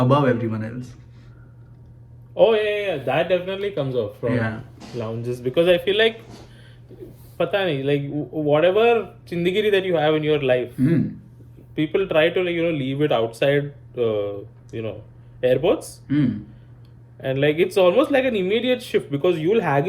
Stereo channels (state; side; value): identical; both; correlation 1.00